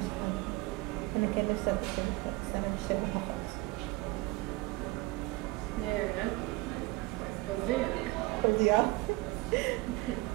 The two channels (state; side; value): quieter; left; 22.0 dB